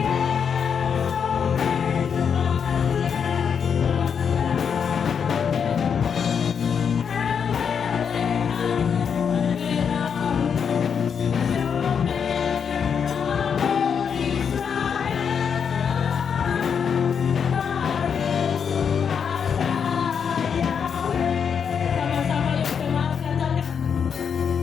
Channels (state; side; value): quieter; right; 7.0 dB